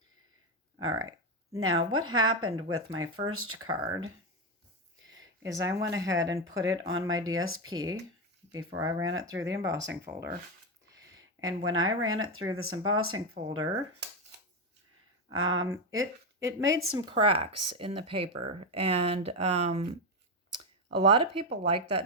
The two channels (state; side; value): normal; both; correlation 0.09